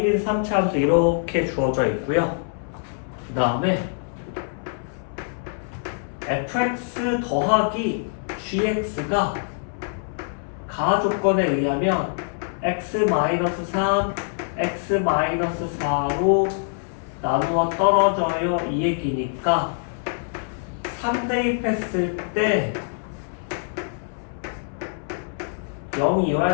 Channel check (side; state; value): right; silent; 62 dB below the other